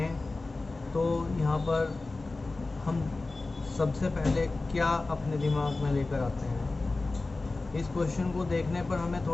तो यहाँ पर हम सबसे पहले क्या अपने दिमाग में लेकर आते हैं। इस क्वेश्चन को देखने पर हमें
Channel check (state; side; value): quieter; right; 3.4 dB